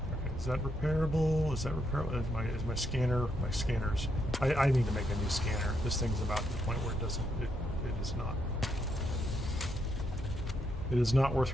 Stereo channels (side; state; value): both; normal; correlation 0.78